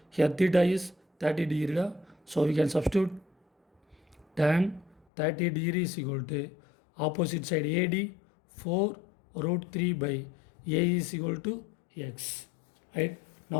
Here theta is 30 degree. So we can substitute tan 30 degree is equal to opposite side AD 4 root 3 by A is equal to x, right?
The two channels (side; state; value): right; drops out; at 5.1 s